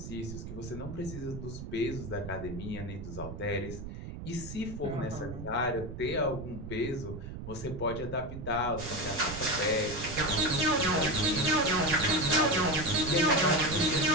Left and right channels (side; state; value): right; noise; rumble, 9 dB below the sound